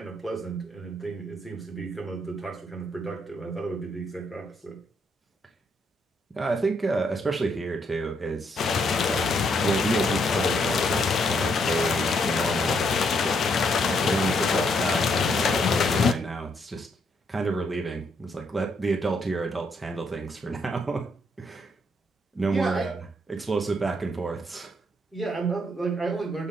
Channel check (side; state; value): both; normal; correlation 0.74